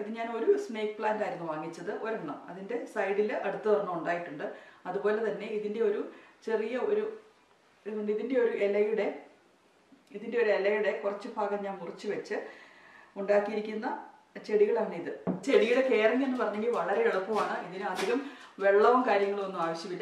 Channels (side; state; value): both; identical; correlation 1.00